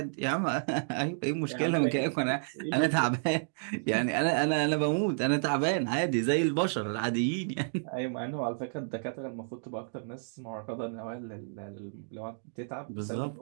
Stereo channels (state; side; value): silent; left; digital silence